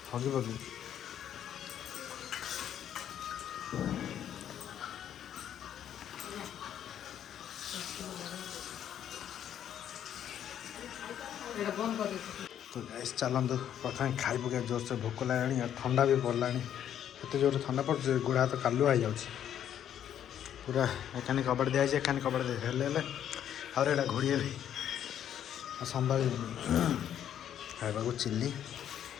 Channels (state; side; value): quieter; right; 10.0 dB